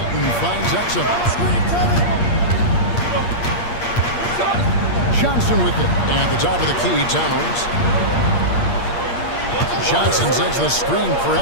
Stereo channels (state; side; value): late; right; 8.6 ms